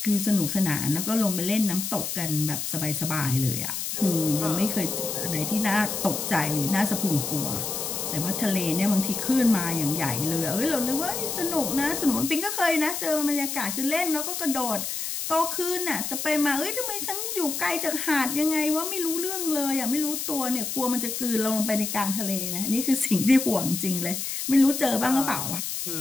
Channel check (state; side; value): noise; left; hiss, 4 dB below the sound